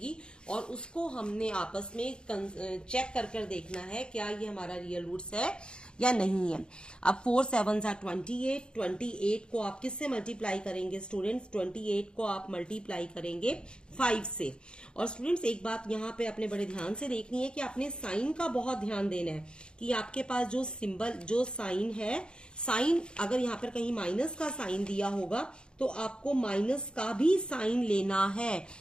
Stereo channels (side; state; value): right; late; 0.051 ms